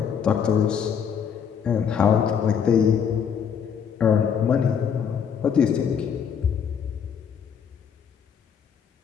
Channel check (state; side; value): quieter; right; 7.4 dB